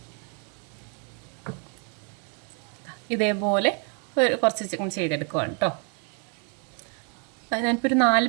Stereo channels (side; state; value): left; quieter; 39.9 dB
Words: ഇതേപോലെ കുറച്ച് ചെയ്തെടുക്കുവാണ് കേട്ടോ. ഞാനിപ്പോൾ ഒരു 4